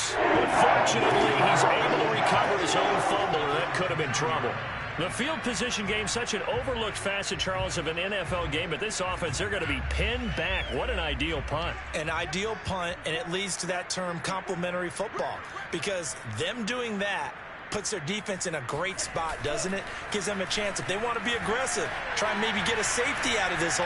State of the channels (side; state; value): both; identical; correlation 1.00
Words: But fortunately, he's able to recover his own fumble, and that could have been trouble. The field position game, such an overlooked facet, Charles, of an NFL game. But this offense, they're going to be pinned back. What an ideal punt. An ideal punt, and it leads to that term complementary football. Because them doing that puts their defense in a great spot, doesn't it? Gives them a chance. If they want to be aggressive, try and maybe get a safety out of this